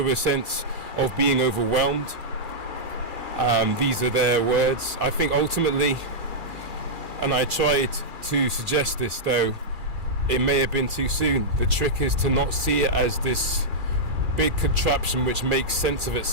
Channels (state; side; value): late; left; 2.4 ms